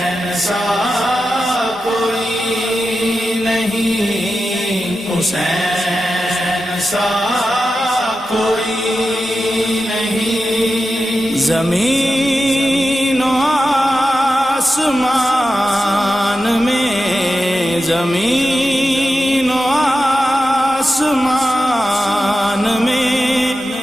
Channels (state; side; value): normal; both; correlation 0.91